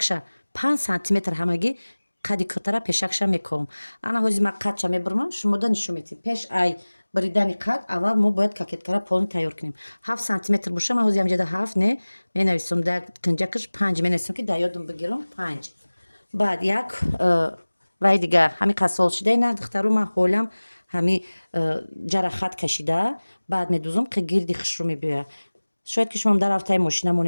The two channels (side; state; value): both; inverted; correlation -1.00